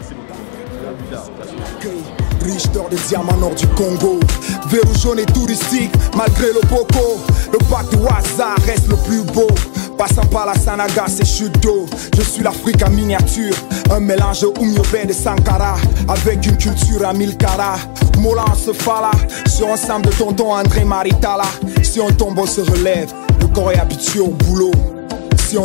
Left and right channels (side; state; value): right; silent; digital silence